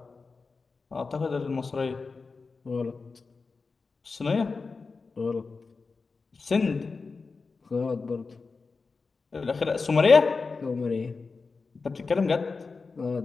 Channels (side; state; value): right; quieter; 4.4 dB